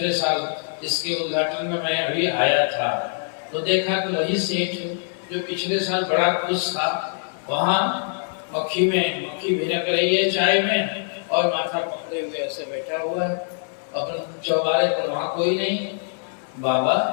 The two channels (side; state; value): right; silent; digital silence